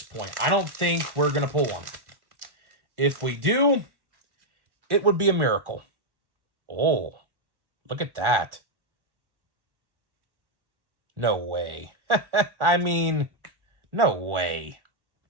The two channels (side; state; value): left; late; 1.1 ms